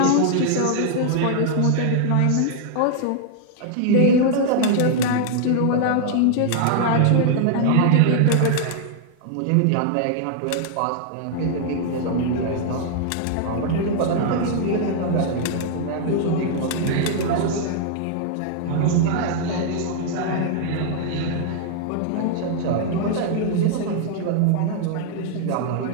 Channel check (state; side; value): different; both; correlation -0.01